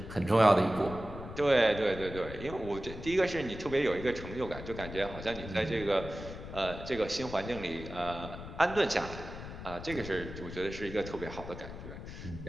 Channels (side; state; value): left; noise; rumble, 11 dB below the sound